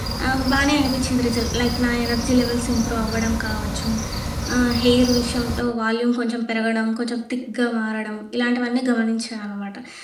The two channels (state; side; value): identical; both; correlation 1.00